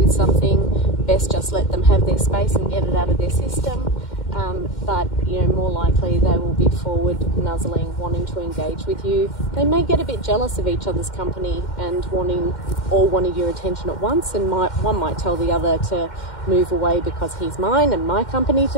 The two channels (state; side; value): late; right; 2.1 ms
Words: something. Best just let them have their space and get it out of their system. But more likely they will be forward, nuzzling, wanting to engage with you. They may get a bit jealous of each other's company and wanting your attention at once, and one might tell the other to move away because he's mine and my company